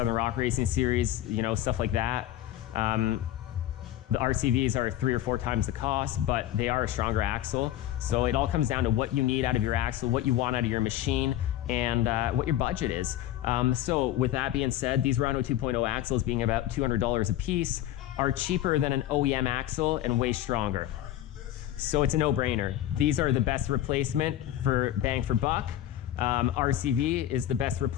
Rock Racing Series, you know, stuff like that. The RCVs are 3 or 4 times the cost, but they are a stronger axle. So it all comes down to what you need out of your axle, what you want out of your machine, and what your budget is. So with that being said, these Rhino 2.0 axles, being about $200 a piece, are cheaper than an OEM axle and way stronger. So it's a no-brainer. These are the best replacement for bang for buck. RCV is the best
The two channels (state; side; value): quieter; right; 12.8 dB